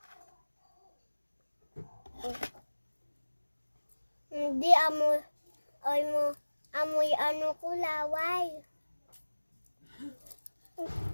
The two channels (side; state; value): both; inverted; correlation -1.00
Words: Hindi amoy ano ko laway.